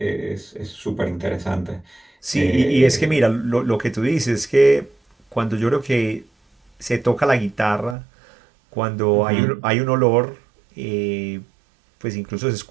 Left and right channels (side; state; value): left; drops out; at 8.0 s